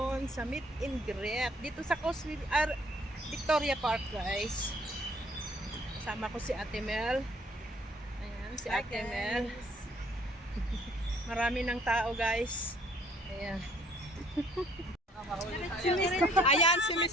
sa meet and greet dito sa Victoria Park guys. Kasama ko si Ate Mel. Ayan, si Ate Mel. Marami ng tao guys. Ayan. Ayan si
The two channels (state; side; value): normal; both; correlation 0.60